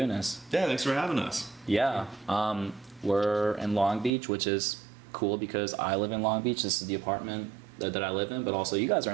this. Yeah, thanks for having us. Yeah, we're in Long Beach, which is cool because I live in Long Beach. This is the apartment that I live in, but also you guys are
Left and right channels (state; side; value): drops out; left; at 4.1 s